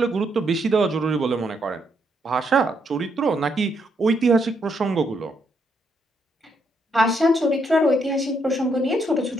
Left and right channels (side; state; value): both; normal; correlation 0.76